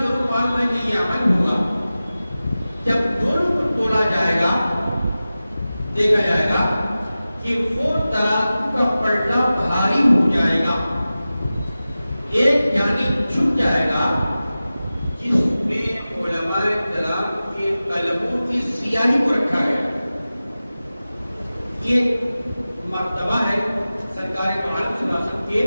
معلوم ہے کہ یہ عمل ہوگا۔ جب دونوں کو تولا جائے گا دیکھا جائے گا کہ وہ ترازو کا پلٹا بھاری ہو جائے گا، ایک جانب جھک جائے گا جس میں علماء کرام کے قلموں کی سیاہی کو رکھا گیا۔ یہ مرتبہ ہے سرکار محمد صلی اللہ علیہ وسلم کے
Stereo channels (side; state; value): both; inverted; correlation -0.95